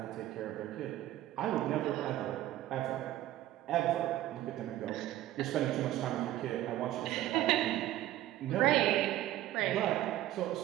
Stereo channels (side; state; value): left; quieter; 14.3 dB